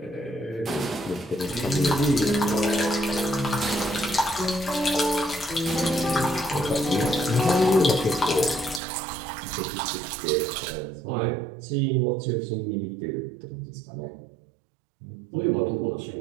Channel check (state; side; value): drops out; left; at 8.8 s